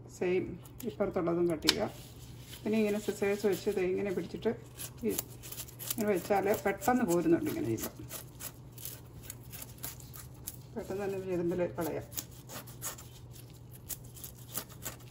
സെയിം ഇപ്പുറത്തുള്ളതും കട്ട് ചെയ്യുക. പിന്നെ ഇങ്ങനെ സിസേഴ്സ് വെച്ച് ഇത് ഇങ്ങനെ പിടിച്ചിട്ട് ഇങ്ങനെ വെച്ചാൽ പെട്ടെന്ന് പോരുന്നുണ്ട്. ഇങ്ങനെ ചെയ്യുമ്പോൾ പെട്ടെന്ന് തന്നെ ചെതുമ്പിൽ കളയാം.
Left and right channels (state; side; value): identical; both; correlation 1.00